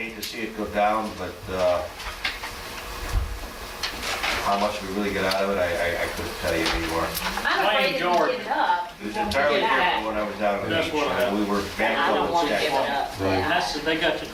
to see it go down, but how much we really get out of it, I couldn't tell you anymore. I'm afraid if you George. give it up, It you was won't entirely get it different back. when I was down on the That's beach. what We were And I bankrupt don't and want to give it sketchy. up. They got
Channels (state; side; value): identical; both; correlation 1.00